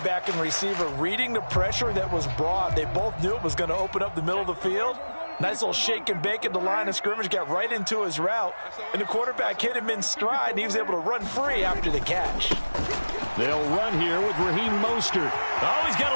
and receiver reading the pressure that was brought. They both knew it was going to open up the middle of the field. Nice little shake and bake at the line of scrimmage, got right into his route. And the quarterback hit him in stride, and he was able to run free after the catch. They'll run here with Raheem Mostert. Oh, he's got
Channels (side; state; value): both; inverted; correlation -1.00